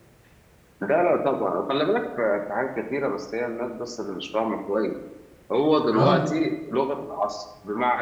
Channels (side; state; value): both; identical; correlation 1.00